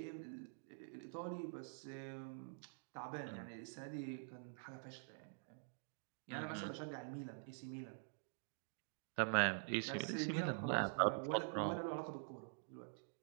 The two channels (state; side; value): silent; left; digital silence